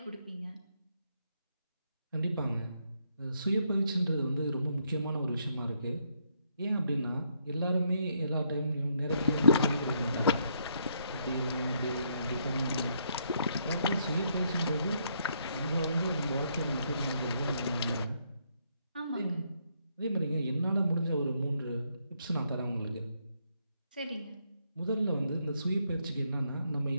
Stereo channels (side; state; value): both; inverted; correlation -0.74